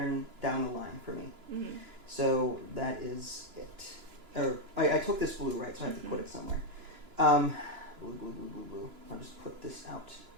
down the line for me. Mm-hmm. So that is it. Or I took this blue, right? So I have to put it somewhere. Blue, blue, blue, blue, blue. I'll just put this out.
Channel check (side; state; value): left; late; 2.9 ms